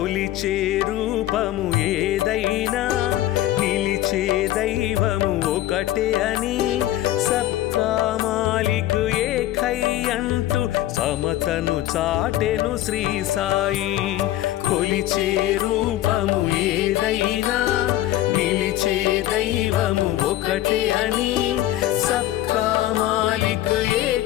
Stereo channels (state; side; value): quieter; right; 14.5 dB